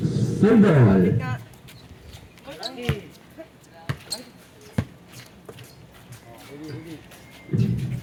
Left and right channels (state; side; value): identical; both; correlation 1.00